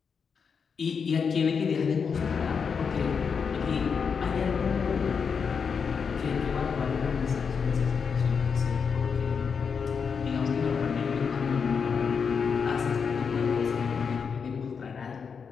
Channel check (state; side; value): quieter; right; 6.1 dB